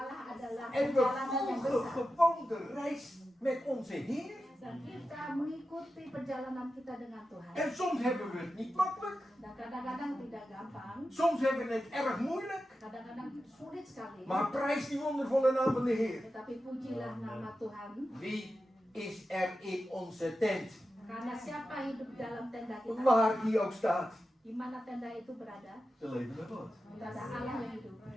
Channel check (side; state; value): both; normal; correlation 0.91